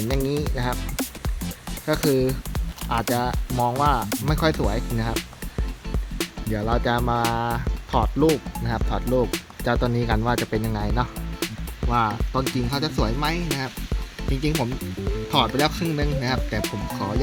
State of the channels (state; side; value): identical; both; correlation 1.00